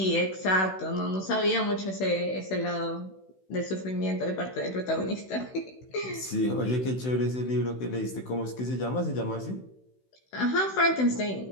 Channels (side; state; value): right; late; 16 ms